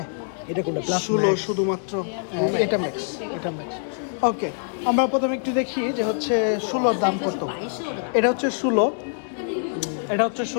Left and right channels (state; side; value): silent; right; digital silence